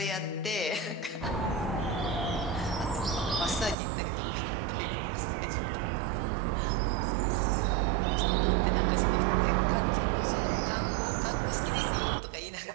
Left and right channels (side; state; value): left; drops out; at 3.8 s